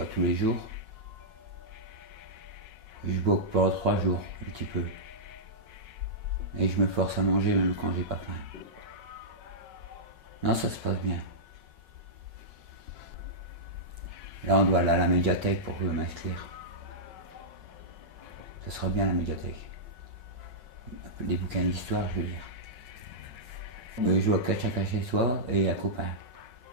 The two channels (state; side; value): late; left; 5.4 ms